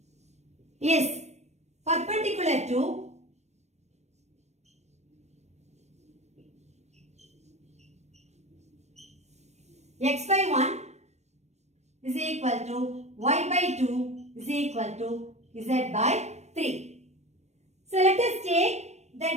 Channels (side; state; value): left; late; 0.32 ms